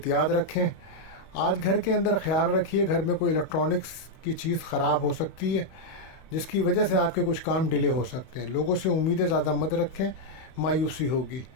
رکھیں. آج گھر کے اندر خیال رکھیے، گھر میں کوئی الیکٹرانکس کی چیز خراب ہو سکتی ہے جس کی وجہ سے آپ کے کچھ کام ڈیلے ہو سکتے ہیں. لوگوں سے امیدیں زیادہ مت رکھیں، مایوسی ہوگی.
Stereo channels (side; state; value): right; late; 31 ms